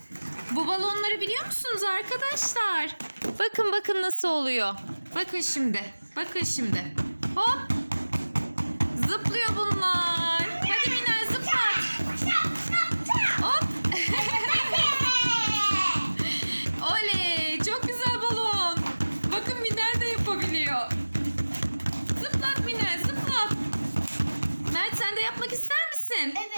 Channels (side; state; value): both; inverted; correlation -1.00